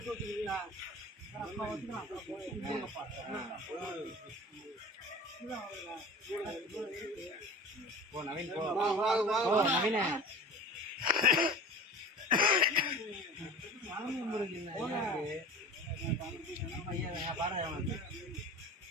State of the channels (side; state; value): both; normal; correlation 0.37